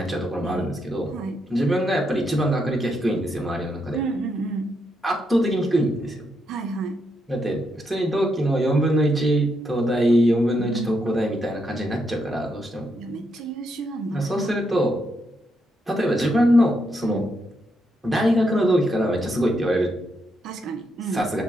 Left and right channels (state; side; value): normal; both; correlation 0.80